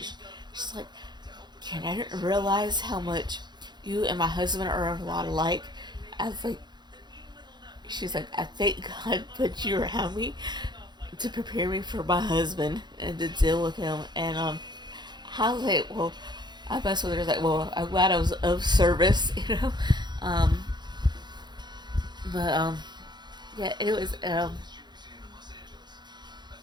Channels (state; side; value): late; left; 0.21 ms